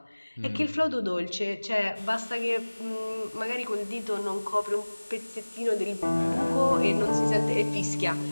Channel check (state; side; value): inverted; both; correlation -1.00